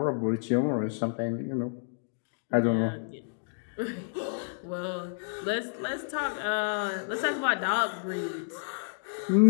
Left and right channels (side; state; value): right; silent; digital silence